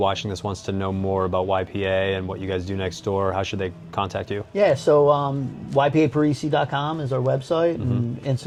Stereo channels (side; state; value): both; identical; correlation 1.00